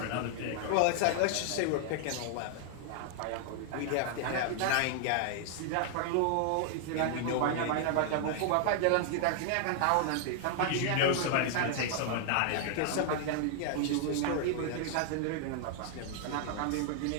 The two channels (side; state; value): both; different; correlation 0.00